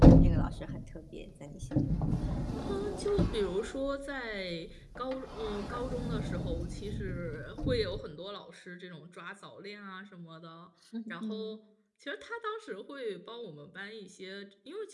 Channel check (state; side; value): identical; both; correlation 1.00